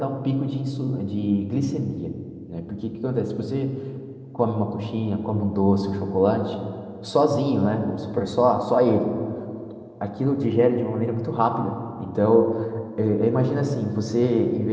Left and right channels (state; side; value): identical; both; correlation 1.00